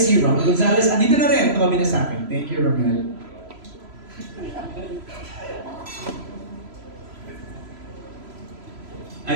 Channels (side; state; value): left; late; 3.0 ms